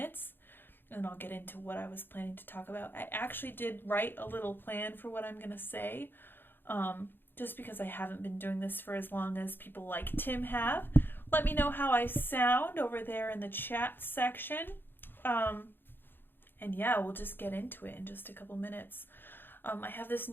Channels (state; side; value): late; right; 0.099 ms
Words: and then I'll get into what I was planning to talk about. I actually did write a little plan for what I'm going to say, just because I haven't been doing this for as long as people like Tim have. Let me know how I sound over there in the chat section. And yeah, we'll just get into it in just a couple minutes. I have this